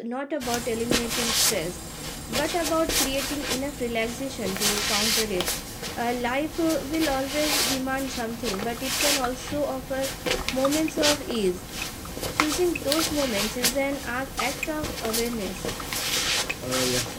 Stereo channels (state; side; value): identical; both; correlation 1.00